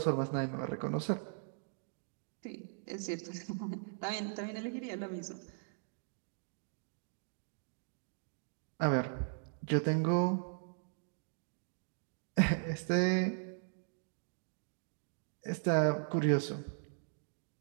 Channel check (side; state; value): left; silent; digital silence